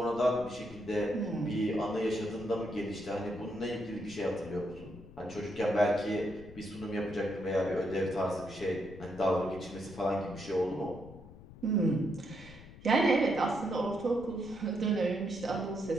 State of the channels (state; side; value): noise; left; rumble, 18 dB below the sound